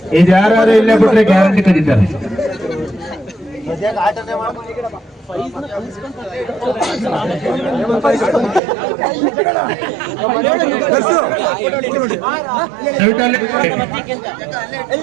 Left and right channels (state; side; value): drops out; left; at 8.6 s